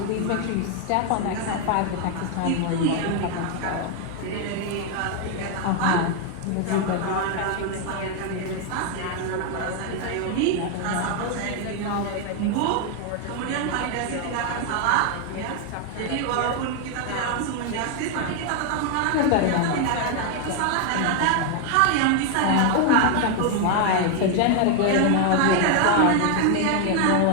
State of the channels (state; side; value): different; both; correlation 0.01